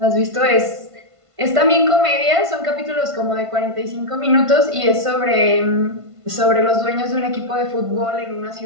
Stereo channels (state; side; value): late; left; 1.5 ms